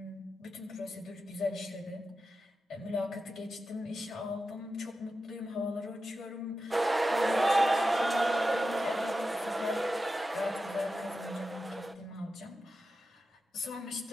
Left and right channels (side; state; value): both; normal; correlation 0.91